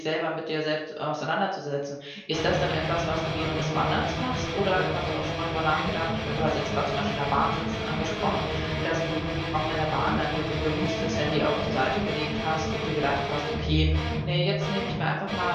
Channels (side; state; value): both; identical; correlation 1.00